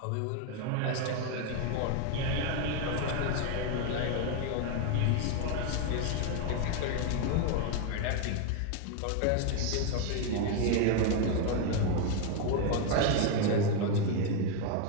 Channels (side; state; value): both; different; correlation 0.01